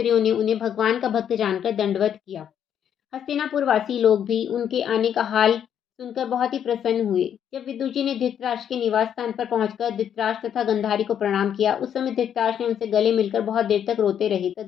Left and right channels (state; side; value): quieter; right; 9.0 dB